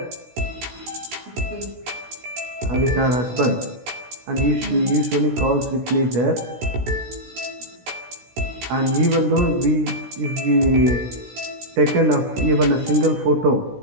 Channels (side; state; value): left; late; 16 ms